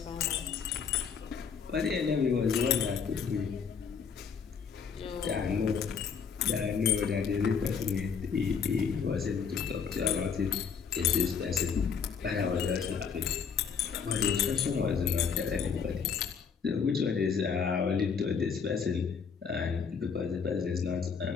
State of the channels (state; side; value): quieter; right; 6.4 dB